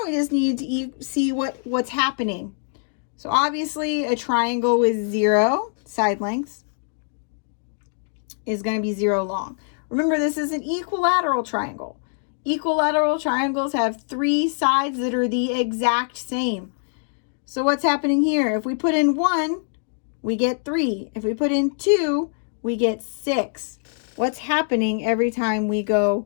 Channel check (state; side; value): silent; right; digital silence